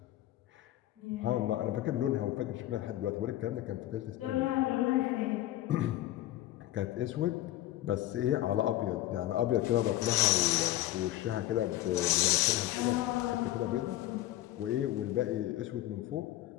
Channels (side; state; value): right; quieter; 14.7 dB